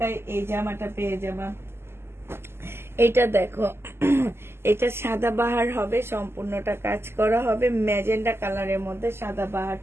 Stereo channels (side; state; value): left; late; 0.12 ms